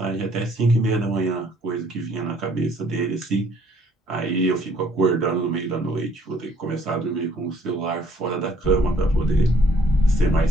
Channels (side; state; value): both; normal; correlation 0.62